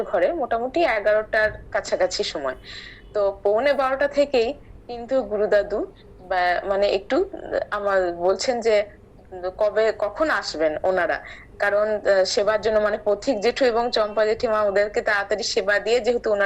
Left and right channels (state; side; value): identical; both; correlation 1.00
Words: ঘরে মোটামুটি 11টার কাছাকাছি সময়। তো 11:45 থেকেই কিন্তু গুরুদাদু মানে একটু আমার বলছেন যে কবে কখন আসবেন ওনারা, কারণ সেবার জন্য মানে পথিক জেঠু এবং চম্পা জেঠিমা ওদেরকে তাড়াতাড়ি সেবা দিয়ে যেহেতু